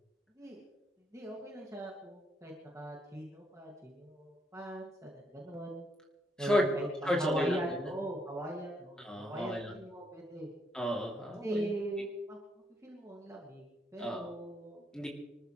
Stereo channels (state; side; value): normal; both; correlation 0.74